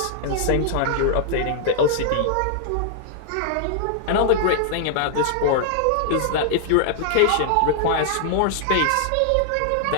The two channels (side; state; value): both; different; correlation -0.01